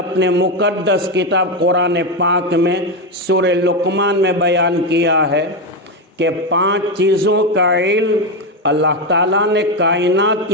مقدس کتاب قرآن پاک میں سورہ لقمان میں بیان کیا ہے کہ 5 چیزوں کا علم اللہ تعالیٰ نے کائنات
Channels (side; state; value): both; normal; correlation 0.10